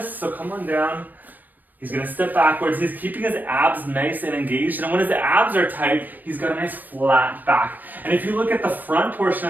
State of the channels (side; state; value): left; late; 0.088 ms